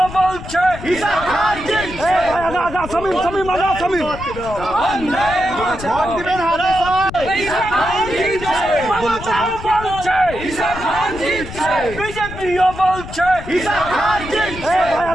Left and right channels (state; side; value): noise; left; rumble, 12 dB below the sound